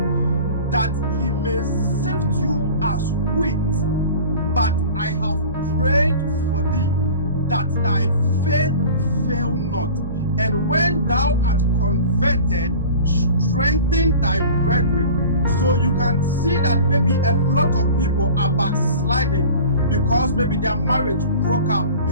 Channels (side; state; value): both; inverted; correlation -0.40